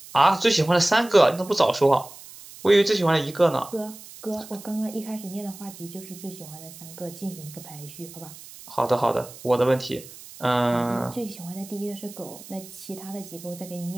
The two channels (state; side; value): noise; right; hiss, 17 dB below the sound